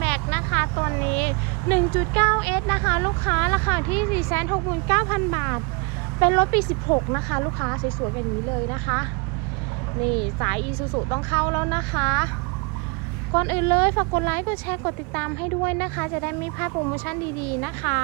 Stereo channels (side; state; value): left; quieter; 30.6 dB